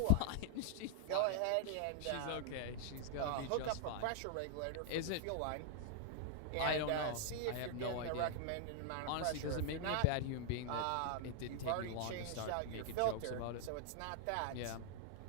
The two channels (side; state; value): both; different; correlation 0.00